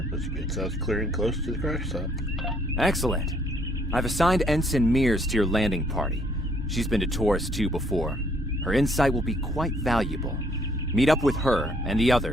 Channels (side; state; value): both; normal; correlation 0.65